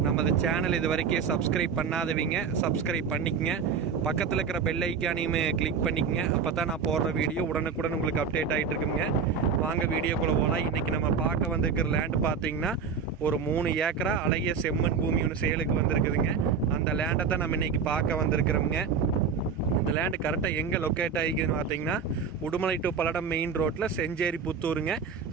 நமது சேனல் இது வரைக்கும் சப்ஸ்கிரைப் பண்ணாதவங்க சப்ஸ்கிரைப் பண்ணிக்கங்க. பக்கத்தில் இருக்கிற பெல் ஐக்கானையுமே கிளிக் பண்ணிக்கங்க. அப்போ தான் நான் போடுற வீடியோ உடனுக்குடன் உங்களுக்கு அப்டேட் ஆகிட்டு இருக்குங்க. வாங்க வீடியோக்குள்ளே போகலாம். இன்றைக்கி நம்ம பார்க்க வந்திருக்கிற லேண்டு பார்த்தீங்கன்னா ஒரு 3 ஏக்கரா அழகிய செம்மண் பூமி ஒன்று சேலுக்கு வந்திருக்குதுங்க. அந்த லேண்டை தான் நம்ம இன்றைக்கி பார்க்க வந்திருக்கிறோம்ங்க. இந்த லேண்டு கரெக்டாக எங்கே லொக்கேட் ஆகிக்குதுன்னு பார்த்தீங்கன்னா உடுமலை டு பல்லடம் மெயின் ரோட்டில் செஞ்சேரி புத்தூருங்க.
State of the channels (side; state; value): left; quieter; 6.0 dB